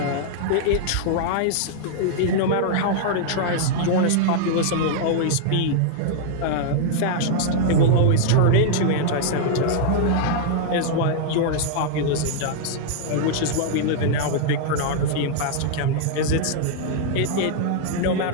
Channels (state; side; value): different; both; correlation -0.01